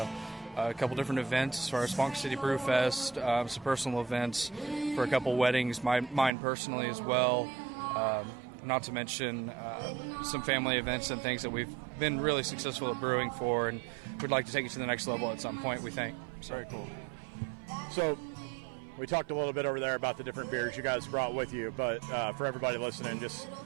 a couple different events as far as Ponca City Brew Fest, some personal events for a couple weddings, mine personally as well. Not to mention some family events and things that we've been really successful at brewing for, and we'd like to take it to the next level at some point, we think. Very cool. So we talked a little bit over there about the different beers you guys brought with you, but for everybody listening, just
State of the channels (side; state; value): left; drops out; at 6.3 s